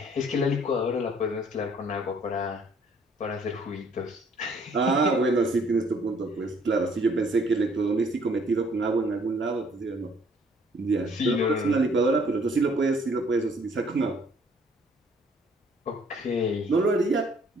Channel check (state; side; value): normal; both; correlation 0.61